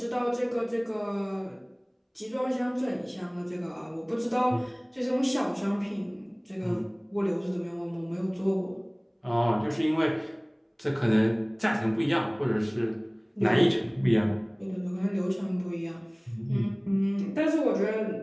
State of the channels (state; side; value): identical; both; correlation 1.00